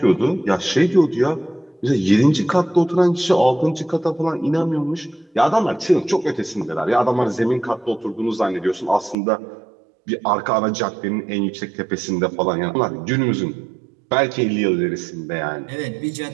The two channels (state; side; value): drops out; left; at 9.2 s